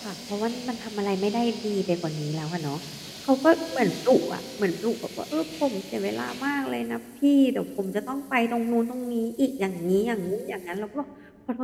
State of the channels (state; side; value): identical; both; correlation 1.00